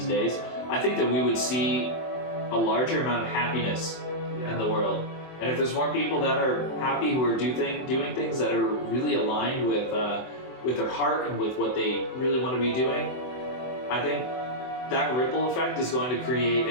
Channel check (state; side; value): late; right; 24 ms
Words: days, I think that we would see a larger amount of happiness in the world. And if there's more people that are happy, who are doing things that are really aligned with their heart and with what they really want to be doing, I think that ripple effect is going to